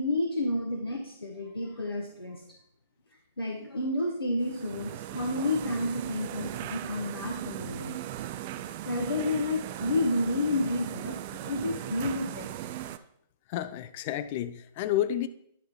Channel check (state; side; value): inverted; both; correlation -0.62